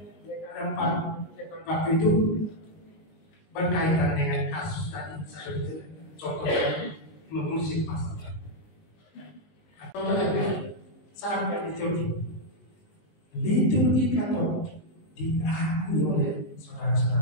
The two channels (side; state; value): right; late; 19 ms